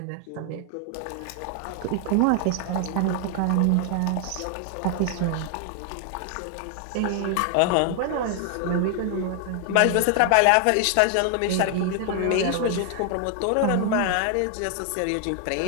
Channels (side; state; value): both; different; correlation 0.00